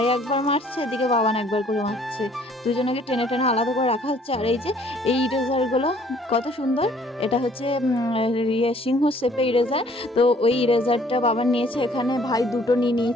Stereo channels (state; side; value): normal; both; correlation 0.59